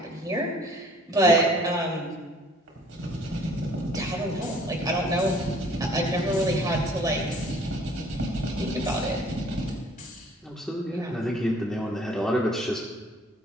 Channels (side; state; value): both; normal; correlation 0.55